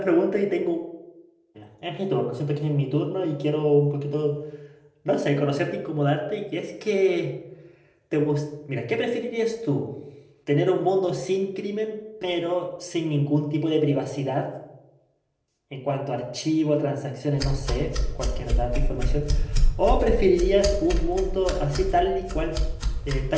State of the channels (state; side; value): identical; both; correlation 1.00